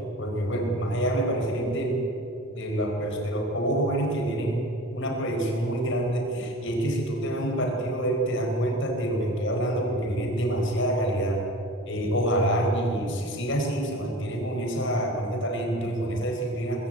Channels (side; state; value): both; normal; correlation 0.39